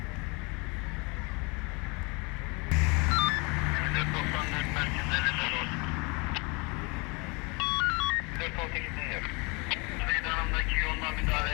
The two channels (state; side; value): quieter; right; 29.2 dB